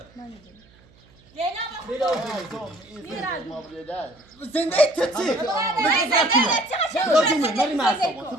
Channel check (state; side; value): noise; right; hum, 29 dB below the sound